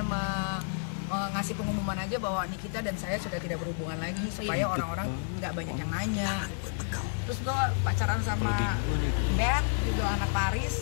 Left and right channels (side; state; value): right; silent; 58 dB below the other